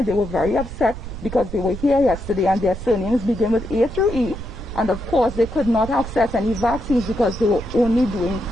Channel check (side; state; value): right; noise; rumble, 10 dB below the sound